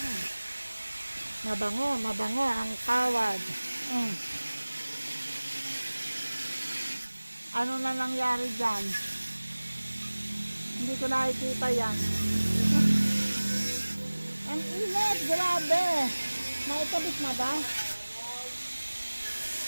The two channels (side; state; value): both; inverted; correlation -1.00